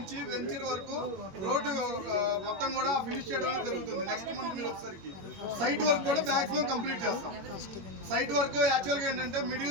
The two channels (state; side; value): late; left; 21 ms